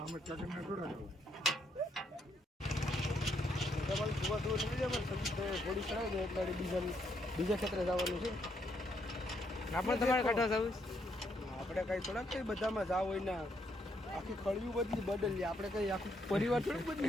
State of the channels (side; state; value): both; normal; correlation 0.74